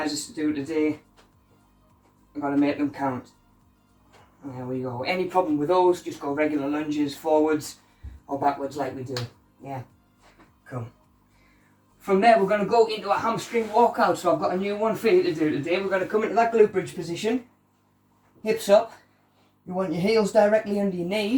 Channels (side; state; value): both; identical; correlation 1.00